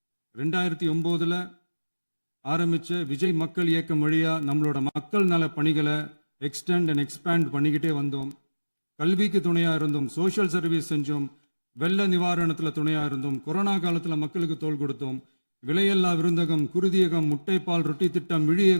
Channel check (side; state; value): both; inverted; correlation -1.00